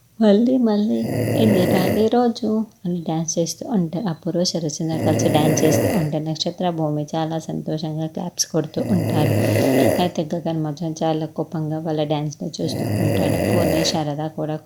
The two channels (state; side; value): identical; both; correlation 1.00